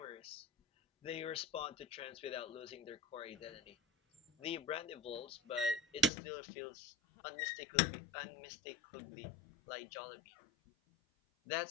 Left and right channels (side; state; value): right; drops out; at 6.1 s